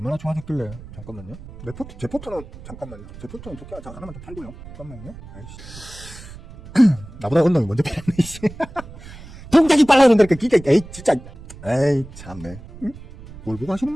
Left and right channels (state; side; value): noise; right; rumble, 16 dB below the sound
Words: 좋아졌길래. 잠깐만요. 제 포트는 잠깐만요. 제 포트는 좋게 하나만 더 팔고요. 잠깐만요. 아이씨. 나보다 언놈이 먼저 팔았네, 이씨. 동작이 빨라 그런다니까, 진짜. 에이, 참네. 응? 뭘 보고 하시는